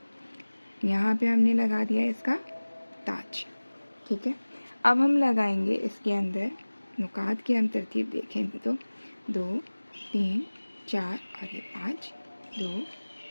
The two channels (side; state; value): both; inverted; correlation -1.00